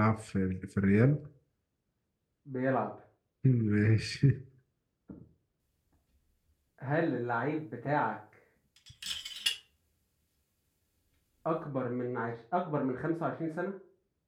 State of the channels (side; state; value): both; identical; correlation 1.00